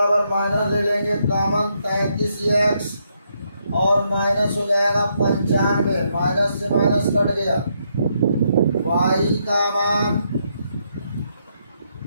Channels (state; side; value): inverted; both; correlation -0.77